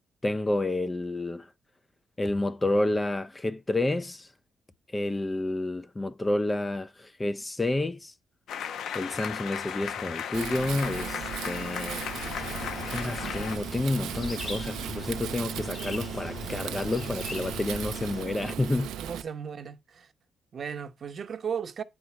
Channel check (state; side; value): normal; both; correlation 0.88